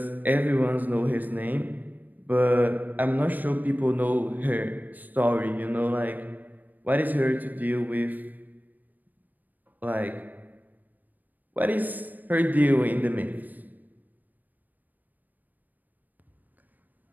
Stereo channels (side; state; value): left; late; 0.085 ms